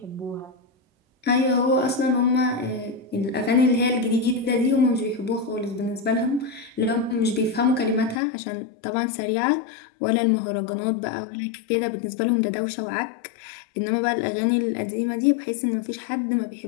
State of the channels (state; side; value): drops out; right; at 8.2 s